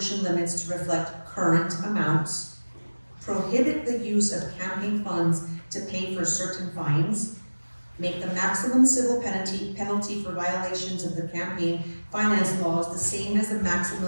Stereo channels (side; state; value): both; inverted; correlation -1.00